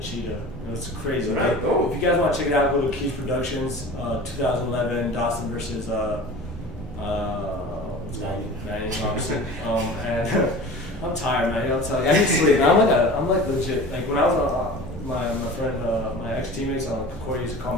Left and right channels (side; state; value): both; normal; correlation 0.38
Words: It was crazy. Like, Oh. if you guys want to check it out, go to Keith Productions, 2011 Dawson versus Vanier, obviously. And I'm tired, man. I'll tell you, I need sleep. I'm like legit. Like when I was my friend, my ex teammates on Concordia used to call